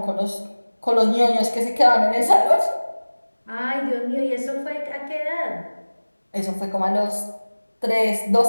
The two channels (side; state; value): both; inverted; correlation -1.00